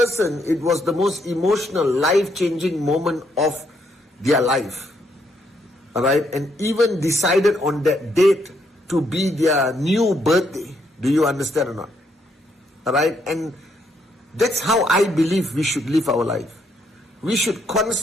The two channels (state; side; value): normal; both; correlation 0.74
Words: it was the most emotional, life-changing moment of their life. Alright? And even decided on that date to be their new birthday. Do you understand or not? Alright? And that's how I believe we should live our life. We should